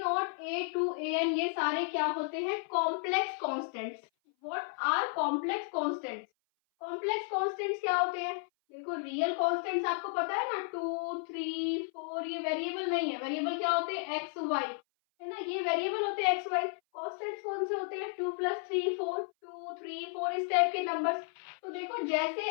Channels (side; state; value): right; silent; 56 dB below the other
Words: A two A N ये सारे क्या होते हैं, complex constants. What are complex constants, complex constants क्या होते हैं, देखो रियल कॉन्स्टेंट्स आपको पता है ना, 2 3 4, ये वेरिएबल नहीं है। वेरिएबल क्या होते हैं, एक्स वाई, है ना, ये वेरिएबल होते हैं एक्स वाई। कॉन्स्टेंट्स कौन से होते हैं, 2 प्लस 3 4, 2 3 4, इस टाइप के नंबर्स। तो देखो जैसे